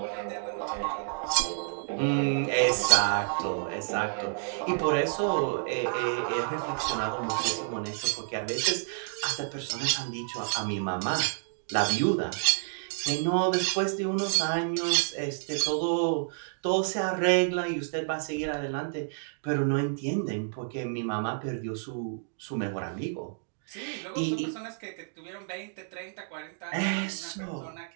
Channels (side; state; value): left; silent; digital silence